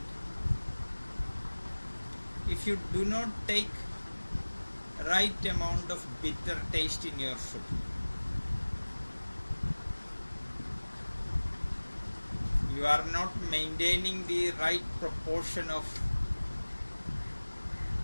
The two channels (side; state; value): both; inverted; correlation -1.00